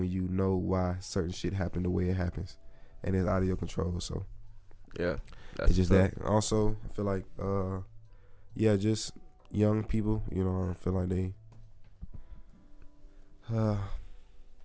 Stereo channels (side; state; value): both; identical; correlation 1.00